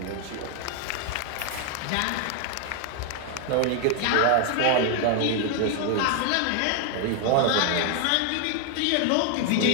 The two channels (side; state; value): both; different; correlation 0.00